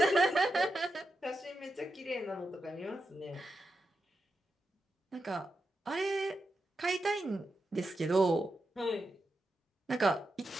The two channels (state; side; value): normal; both; correlation 0.88